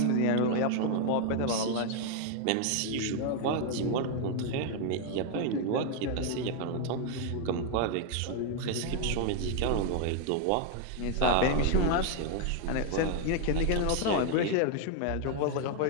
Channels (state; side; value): different; both; correlation 0.00